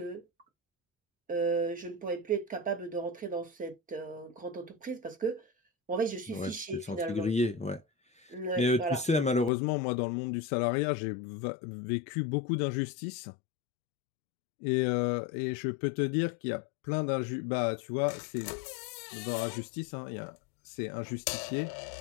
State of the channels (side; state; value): right; drops out; at 9.5 s